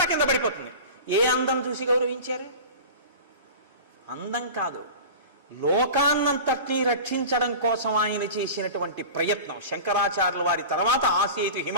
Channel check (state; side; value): inverted; both; correlation -0.34